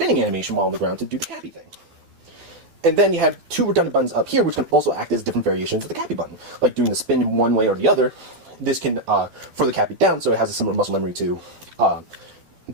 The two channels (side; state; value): left; late; 12 ms